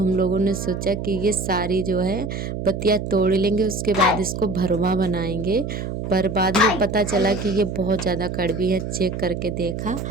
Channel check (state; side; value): noise; right; hum, 5 dB below the sound